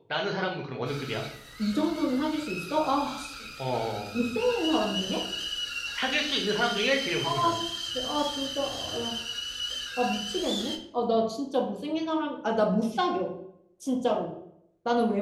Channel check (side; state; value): both; identical; correlation 1.00